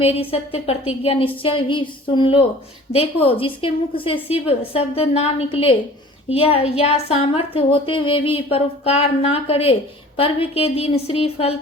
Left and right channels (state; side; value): normal; both; correlation 0.46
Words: सत्य प्रतिज्ञा निश्चय ही सुन लो। देखो, जिसके मुख से शिव शब्द ना निकले या सामर्थ्य होते हुए भी परोपकार ना करे, पर्व के दिन श्रीफल